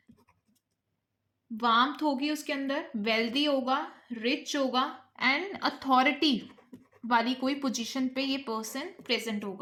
वार्मथ होगी उसके अंदर, वेल्दी होगा, रिच होगा, एंड अथॉरिटी वाली कोई पोजीशन पे ये पर्सन प्रेजेंट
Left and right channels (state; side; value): identical; both; correlation 1.00